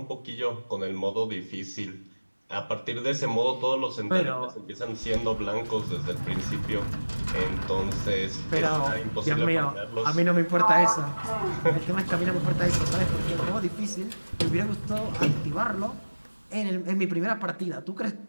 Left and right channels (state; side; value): inverted; both; correlation -1.00